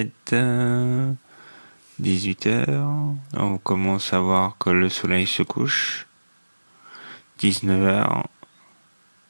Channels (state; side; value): inverted; both; correlation -1.00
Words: 18 heures. On commence à voir que le soleil se couche. 19 heures.